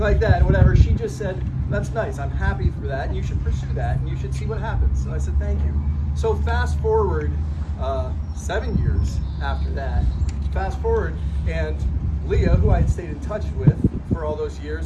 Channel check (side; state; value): both; identical; correlation 1.00